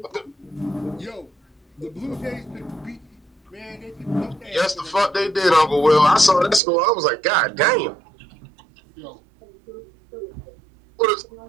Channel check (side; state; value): left; drops out; at 6.6 s